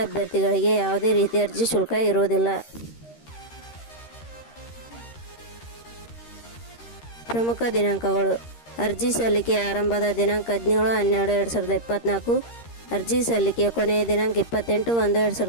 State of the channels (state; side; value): late; right; 13 ms